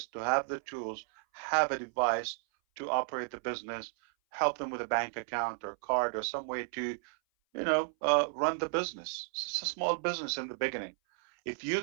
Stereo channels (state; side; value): silent; left; 56 dB below the other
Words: to have the tools, have a device to operate the business, help them with a bank account or card or some way to, you know, run the business. It's a small business in the beginning. If you